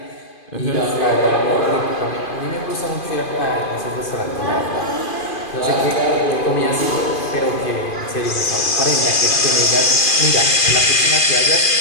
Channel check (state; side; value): late; right; 2.4 ms